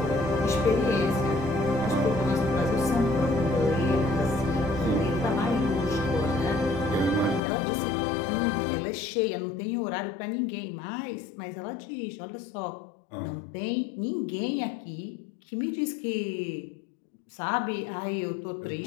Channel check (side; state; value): right; drops out; at 7.4 s